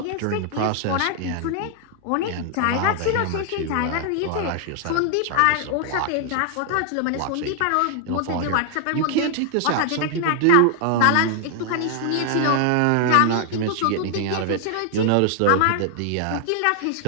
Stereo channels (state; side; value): different; both; correlation 0.00